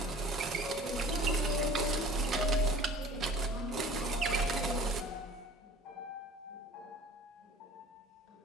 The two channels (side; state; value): both; normal; correlation 0.46